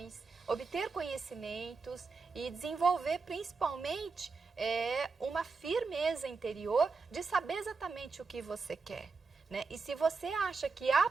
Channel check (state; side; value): quieter; left; 4.5 dB